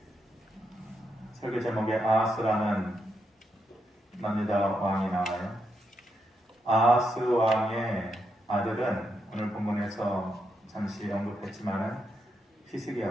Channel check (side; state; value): both; normal; correlation 0.82